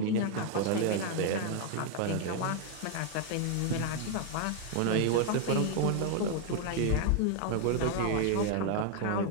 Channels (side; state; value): both; different; correlation 0.00